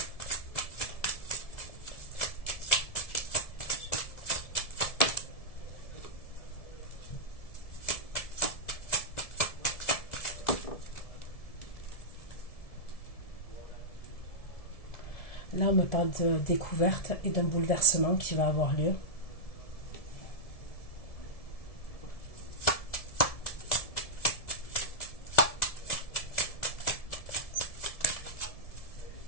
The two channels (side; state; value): right; late; 1.7 ms